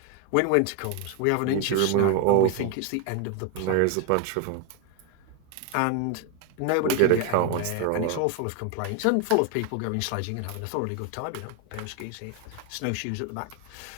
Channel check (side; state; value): both; different; correlation 0.01